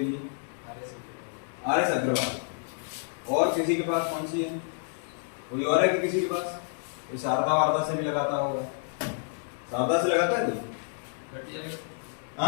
लिए? आर.एस. अग्रवाल। और किसी के पास कौन सी है, कोई और है कि किसी के पास? कोई शारदा वारदा से भी लगाता होगा, शारदा से लगाता है कोई?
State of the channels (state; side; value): silent; right; digital silence